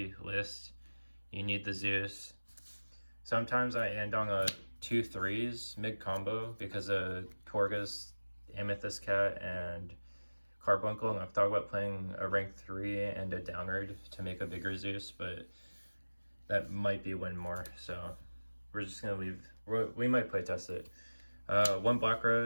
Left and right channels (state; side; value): inverted; both; correlation -1.00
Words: list, you need the Zeus. Sometimes I end on a 2 3s mid combo because of Torgus, Amethyst Cat, and Carbuncle, and I've thought about playing a rank 3 and a downward to make a bigger Zeus, but that might be win more, so we're just gonna leave. We might play test it. One Black